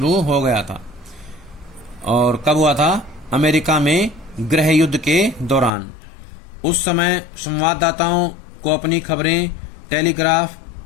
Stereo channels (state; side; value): drops out; right; at 5.7 s